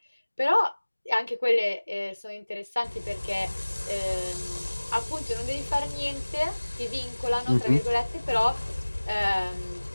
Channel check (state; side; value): inverted; both; correlation -1.00